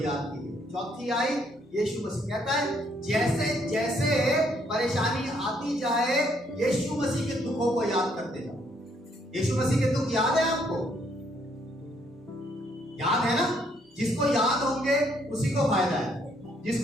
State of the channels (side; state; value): both; normal; correlation 0.69